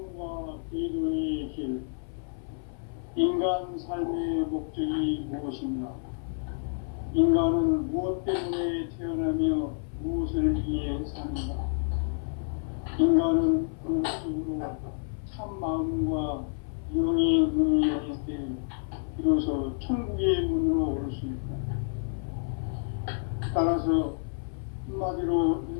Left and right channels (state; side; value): silent; right; 58 dB below the other